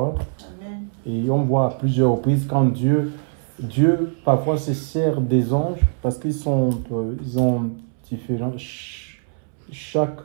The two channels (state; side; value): silent; left; 64 dB below the other